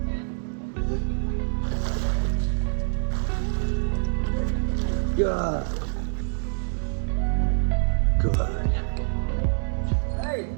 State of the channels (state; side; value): silent; left; 61 dB below the other